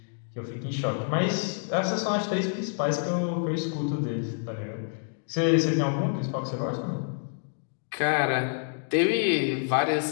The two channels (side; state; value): right; silent; digital silence